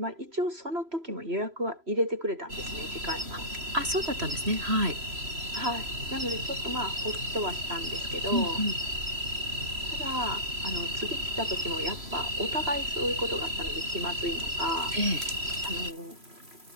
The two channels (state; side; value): late; left; 3.0 ms